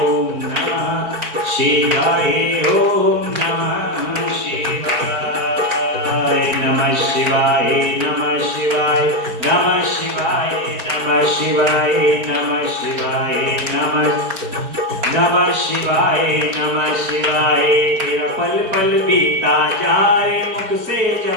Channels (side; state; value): left; late; 4.5 ms